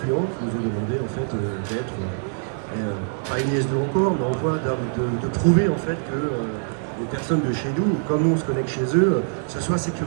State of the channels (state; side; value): silent; left; 61 dB below the other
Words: qui nous ont demandé en fait d'être pas une IS2 encore, mais en voie de prouver en fait que les personnes de chez nous, comme nous on se connecte chez eux, ce soit